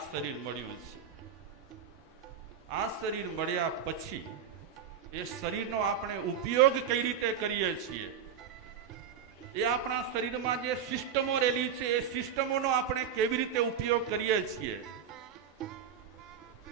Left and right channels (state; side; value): quieter; left; 7.8 dB